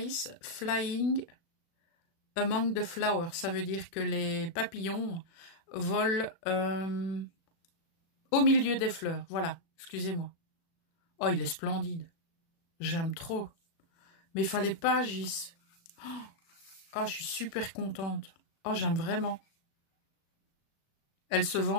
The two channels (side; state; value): right; late; 36 ms